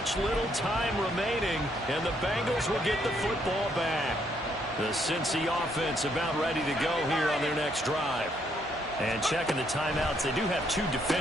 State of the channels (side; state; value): both; normal; correlation 0.72